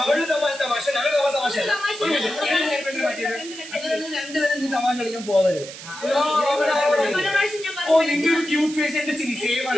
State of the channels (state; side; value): noise; right; hiss, 13 dB below the sound